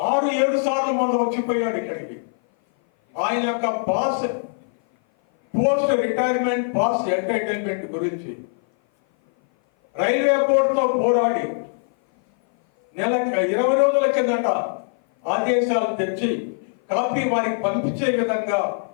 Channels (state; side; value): silent; right; 57 dB below the other